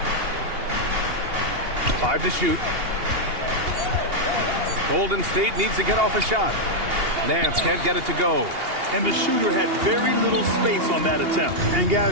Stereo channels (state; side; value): late; left; 2.8 ms